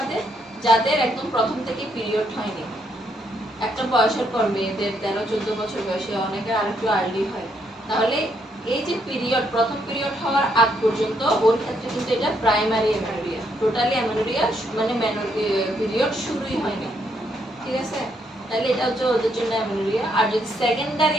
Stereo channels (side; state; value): both; normal; correlation 0.74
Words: যাদের একদম প্রথম থেকে পিরিয়ড হয়নি। একটা বয়সের পর মেয়েদের 13-14 বছর বয়সে, অনেকের আরেকটু আর্লি হয়। তাহলে এই যে পিরিয়ড, প্রথম পিরিয়ড হওয়ার আগ পর্যন্ত ওর ক্ষেত্রে কিন্তু এটা প্রাইমারি অ্যামেনোরিয়া। টোটালি অ্যামেনোরিয়া মানে পিরিয়ড শুরুই হয়নি, ঠিক আছে? তাহলে এটা হচ্ছে ওদের জন্য অ্যামেনোরিয়া। আর যদি